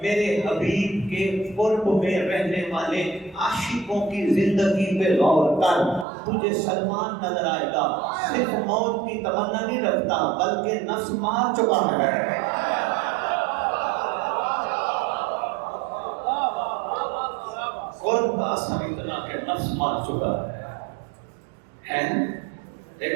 میرے حبیب کے قرب میں رہنے والے عاشقوں کی زندگی پہ غور کر. تجھے سلمان نظر آئے گا، صرف موت کی تمنا نہیں رکھتا بلکہ نفس مار چکا ہے. قرب کا اثر اتنا کہ نفس مار چکا ہے.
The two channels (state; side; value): drops out; left; at 6.1 s